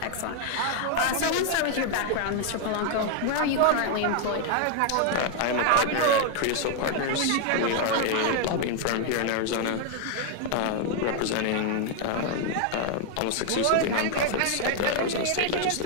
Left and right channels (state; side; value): different; both; correlation 0.00